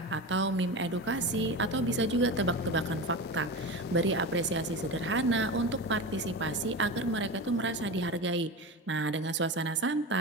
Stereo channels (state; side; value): normal; both; correlation 0.25